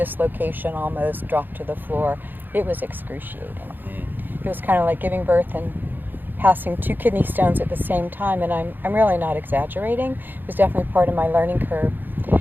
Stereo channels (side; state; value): left; late; 0.091 ms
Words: almost, drop to the floor. It was excruciating. It was kind of like giving birth and passing 2 kidney stones at the same time, and I'm really not exaggerating. It was definitely part of my learning curve.